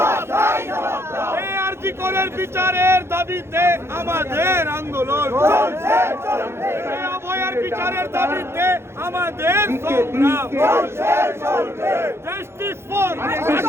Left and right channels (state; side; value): late; left; 0.12 ms